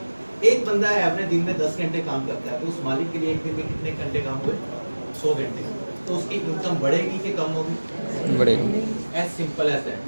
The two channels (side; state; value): both; inverted; correlation -1.00